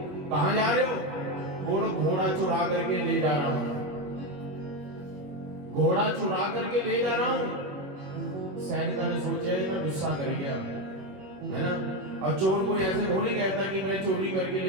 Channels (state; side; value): late; left; 21 ms